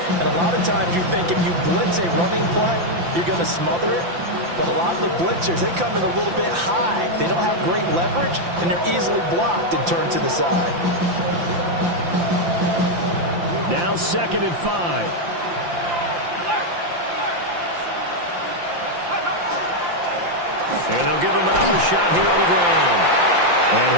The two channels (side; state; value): left; late; 5.8 ms